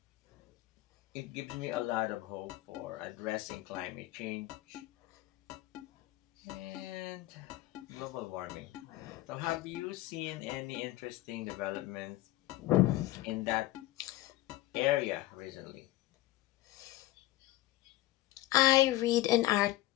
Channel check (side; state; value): right; quieter; 16.4 dB